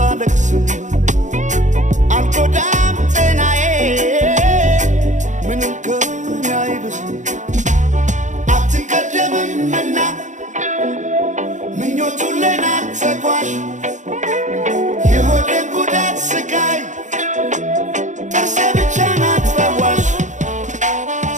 አልጎዳም ጤናዬ ምንም ከኔ አይብስም አትቀደምምና ምኞቱን ለናት ተጓዥ የሆዴን ጉዳት ስቃይ ጥርሴ ብቻ ናት ፈዋሽ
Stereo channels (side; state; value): left; late; 0.35 ms